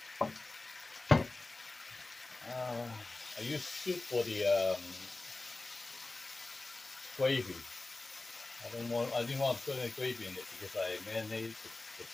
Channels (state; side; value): quieter; right; 3.2 dB